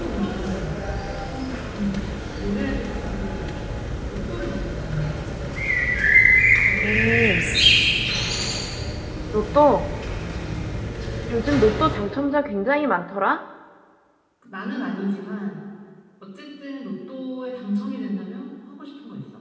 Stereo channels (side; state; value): both; identical; correlation 1.00